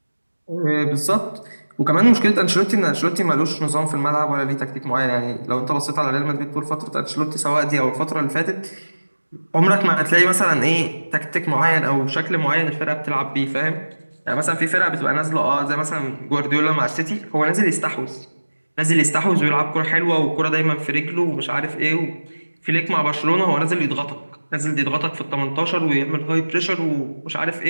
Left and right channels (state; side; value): inverted; both; correlation -1.00